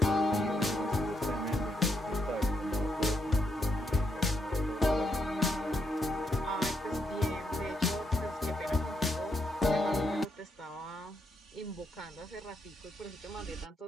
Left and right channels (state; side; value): normal; both; correlation 0.79